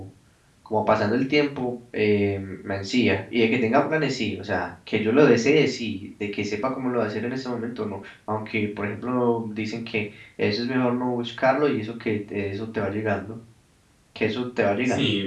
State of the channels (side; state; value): both; identical; correlation 1.00